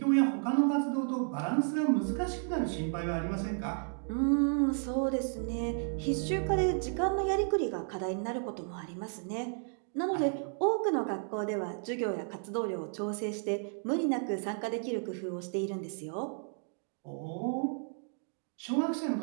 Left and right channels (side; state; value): left; silent; 56 dB below the other